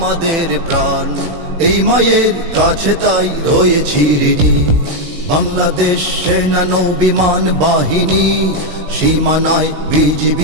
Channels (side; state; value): left; late; 18 ms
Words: প্রাণ, এই মায়ের কাছে তাই রয়েছি ঋণী। বাংলাদেশ সেনা নৌবিমান বাহিনী, সীমানায়